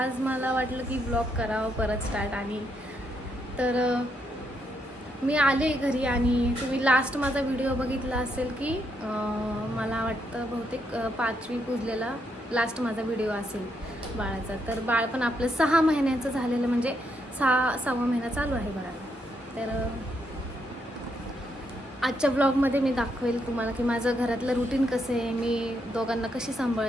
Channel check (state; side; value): normal; both; correlation 0.78